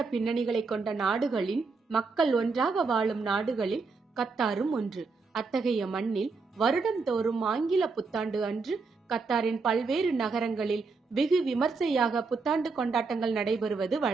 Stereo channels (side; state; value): left; quieter; 4.4 dB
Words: பின்னணிகளை கொண்ட நாடுகளின் மக்கள் ஒன்றாக வாழும் நாடுகளில் கத்தாரும் ஒன்று. அத்தகைய மண்ணில் வருடந்தோறும் ஆங்கில புத்தாண்டு அன்று கத்தாரின் பல்வேறு நகரங்களில் வெகு விமர்சையாக புத்தாண்டு கொண்டாட்டங்கள் நடைபெறுவது